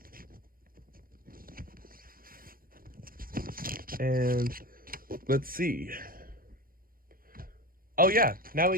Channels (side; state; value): left; late; 0.42 ms